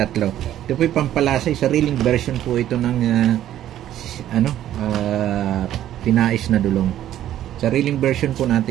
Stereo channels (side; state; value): left; quieter; 12.1 dB